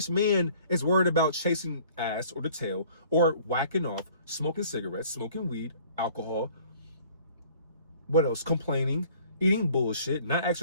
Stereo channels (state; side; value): inverted; both; correlation -0.54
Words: man is worried about chasing ass or the tail or whacking off, smoking cigarettes, smoking weed, alcohol. What else? Complaining, eating bullshit, not